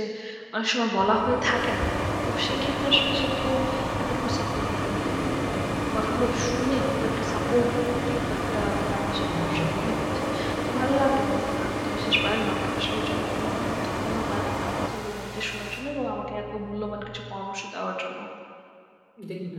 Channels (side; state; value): both; identical; correlation 1.00